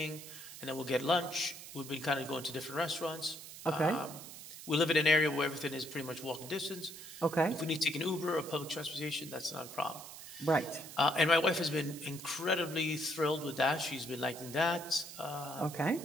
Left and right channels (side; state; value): right; noise; hiss, 13 dB below the sound